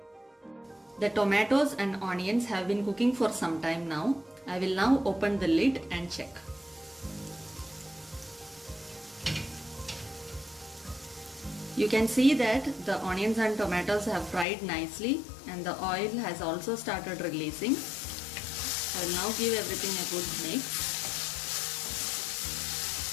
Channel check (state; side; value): drops out; right; at 14.5 s